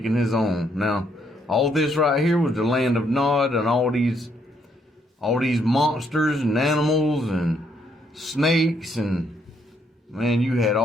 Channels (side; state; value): both; normal; correlation 0.72